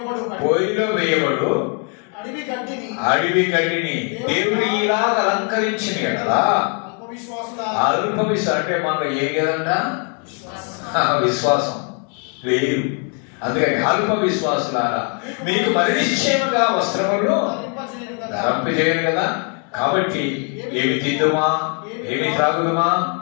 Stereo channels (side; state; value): right; quieter; 39.9 dB